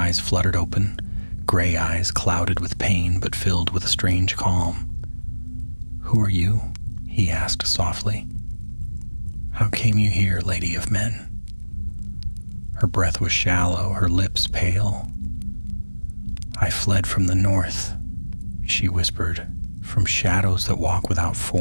fluttered open, gray eyes clouded with pain but filled with a strange calm. "Who are you?" he asked softly. "How came you here, Lady of Men?" Her breath was shallow, her lips pale. "I fled from the north," she whispered, "from shadows that walk without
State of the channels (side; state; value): both; inverted; correlation -1.00